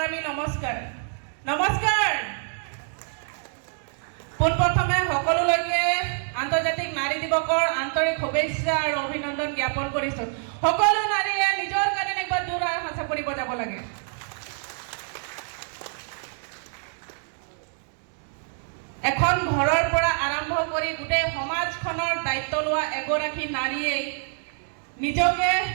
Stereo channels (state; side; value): silent; left; 57 dB below the other